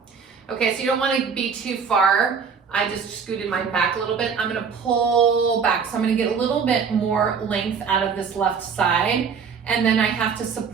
Okay, so you don't wanna be too far. I just scooted mine back a little bit. I'm gonna pull back. So I'm gonna get a little bit more length out of this left side, and then I have to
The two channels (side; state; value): left; quieter; 6.2 dB